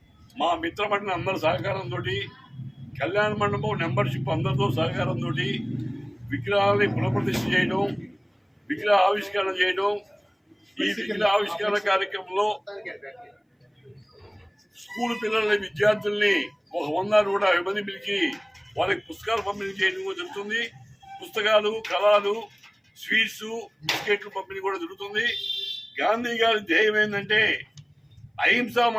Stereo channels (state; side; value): identical; both; correlation 1.00